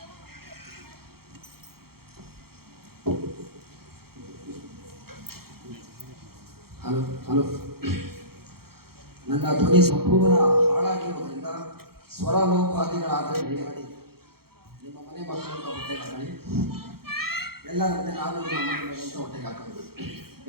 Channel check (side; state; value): left; late; 0.94 ms